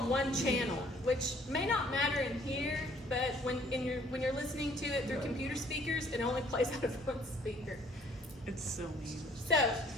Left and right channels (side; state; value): both; normal; correlation 0.60